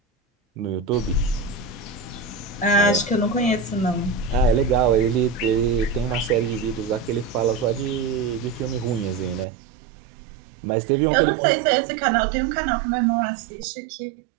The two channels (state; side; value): drops out; left; at 9.5 s